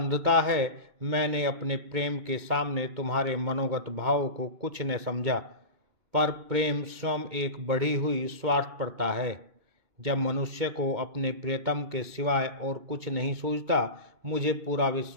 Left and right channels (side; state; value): left; late; 2.2 ms